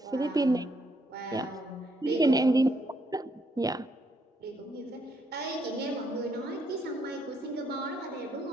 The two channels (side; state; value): both; normal; correlation 0.73